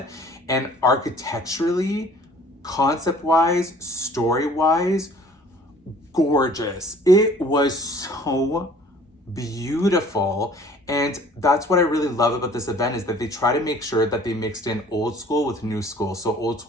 And architecturally, concept-wise, story-wise, gorgeous. It was so beautiful. And that's what I really love about this event is that they try to make sure that they mixed in old school with new school. So old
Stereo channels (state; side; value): normal; both; correlation 0.52